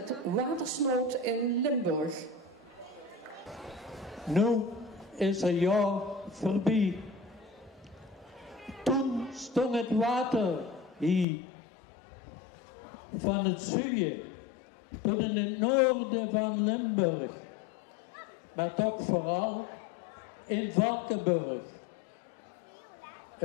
Watersnood in Limburg. Nu is een jaar voorbij. Toen stond het water hier. Van het zuiden tot in het noorden van Limburg. Maar toch vooral in Valkenburg.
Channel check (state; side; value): drops out; right; at 11.2 s